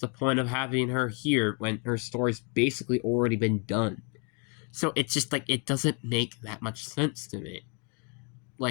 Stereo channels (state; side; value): quieter; right; 36.3 dB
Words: point of having her here when her story's basically already been done? So it's just like, it doesn't make that much sense to me.